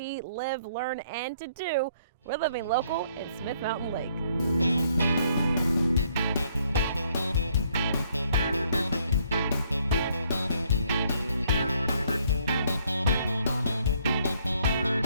live, learn, and to do. We're living local in Smith Mountain Lake.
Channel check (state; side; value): inverted; both; correlation -0.67